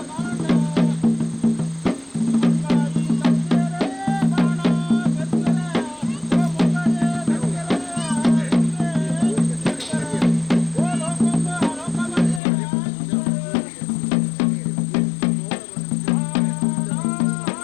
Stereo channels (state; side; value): drops out; right; at 12.4 s